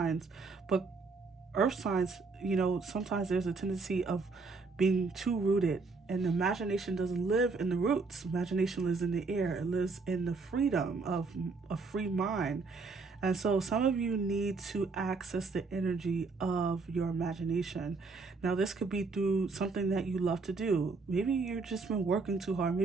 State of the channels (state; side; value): quieter; left; 4.1 dB